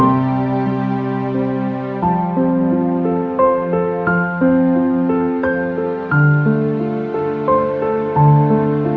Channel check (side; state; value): both; identical; correlation 1.00